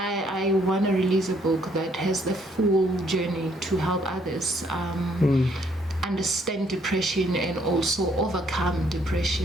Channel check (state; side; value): normal; both; correlation 0.67